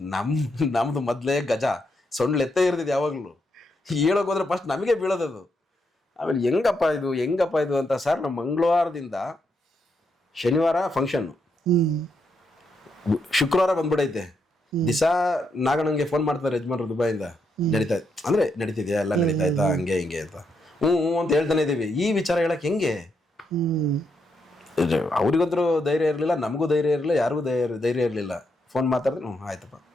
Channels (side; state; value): both; normal; correlation 0.80